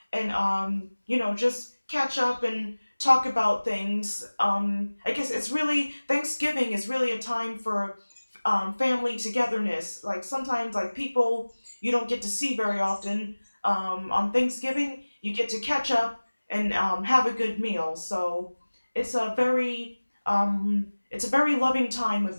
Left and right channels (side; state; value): both; inverted; correlation -1.00